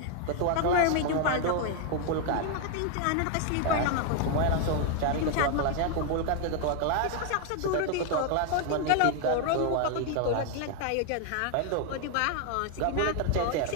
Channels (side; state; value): both; different; correlation 0.00